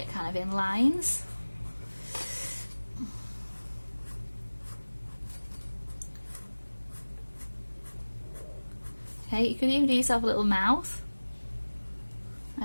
kind of in lines. Okay, you could even do yourself a little mouth.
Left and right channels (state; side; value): inverted; both; correlation -1.00